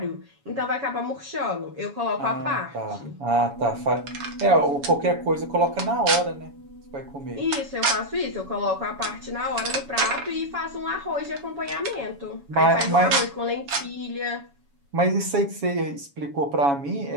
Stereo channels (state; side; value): late; left; 7.1 ms